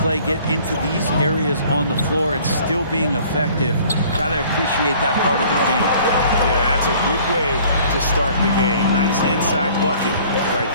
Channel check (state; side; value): inverted; both; correlation -0.53